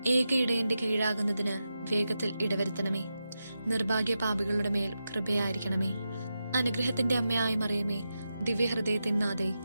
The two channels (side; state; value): both; inverted; correlation -0.89